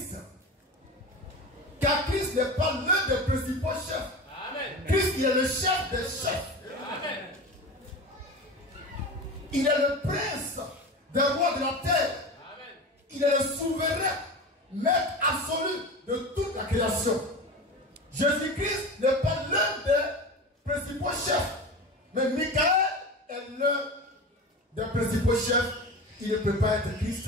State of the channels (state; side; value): normal; both; correlation 0.29